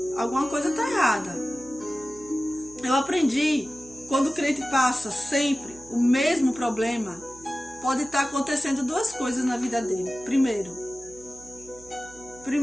Alguma coisa está errada. Eu aprendi, quando o crente passa sempre o mesmo problema, pode estar acontecendo duas coisas na vida dele.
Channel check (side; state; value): right; noise; hum, 22 dB below the sound